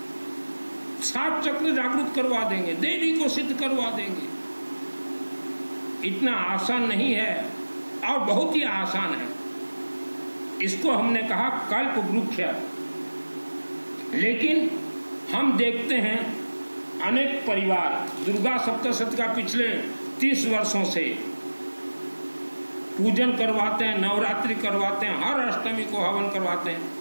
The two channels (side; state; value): both; inverted; correlation -1.00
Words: 7 चक्र जागृत करवा देंगे, देवी को सिद्ध करवा देंगे। इतना आसान नहीं है और बहुत ही आसान है। इसको हमने कहा कल्प वृक्ष। लेकिन हम देखते हैं अनेक परिवार दुर्गा सप्तशती का पिछले 30 वर्षों से पूजन करवाते हैं, नवरात्रि करवाते हैं, हर अष्टमी को हवन करवाते हैं,